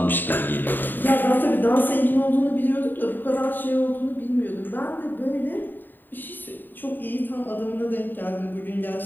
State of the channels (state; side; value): late; right; 0.091 ms